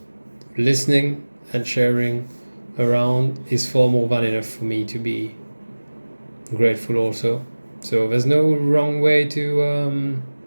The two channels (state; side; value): inverted; both; correlation -1.00